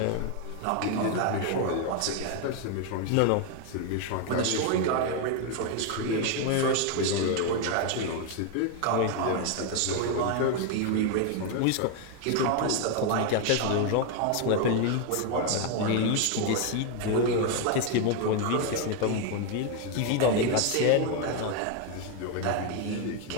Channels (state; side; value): different; both; correlation 0.01